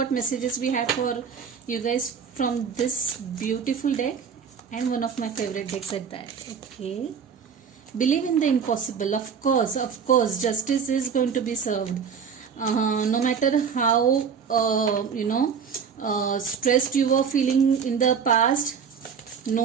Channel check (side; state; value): left; quieter; 6.7 dB